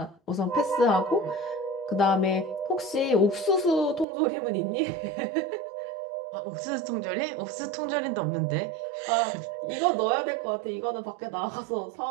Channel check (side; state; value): left; drops out; at 4.0 s